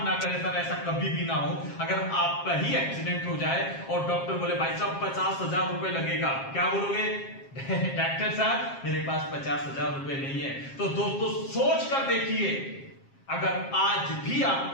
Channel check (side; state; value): right; late; 7.4 ms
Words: करे सर, ऐसा कभी भी ना हो, अगर आपका ही एक्सीडेंट हो जाए और डॉक्टर बोले भाई साहब 50,000 रुपए लगेगा, क्या बोलोगे? डॉक्टर साहब मेरे पास 50,000 रुपए नहीं है। तो दोस्तों सोच कर देखिए, अगर आज भी